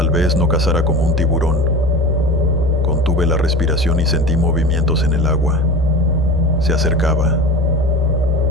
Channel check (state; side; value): normal; both; correlation 0.32